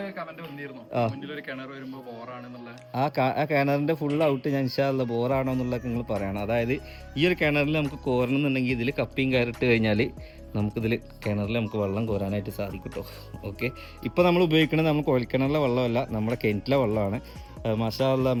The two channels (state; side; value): identical; both; correlation 1.00